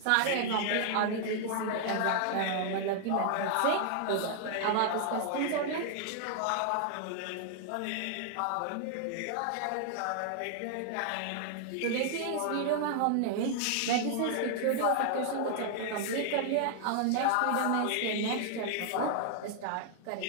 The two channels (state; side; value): different; both; correlation 0.00